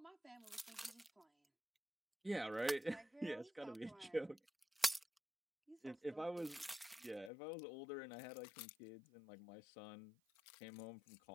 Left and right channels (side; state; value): right; drops out; at 7.3 s